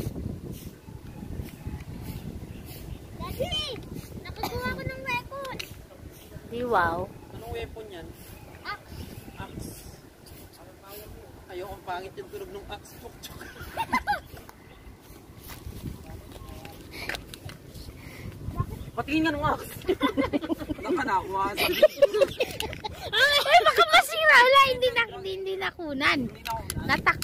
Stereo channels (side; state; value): both; identical; correlation 1.00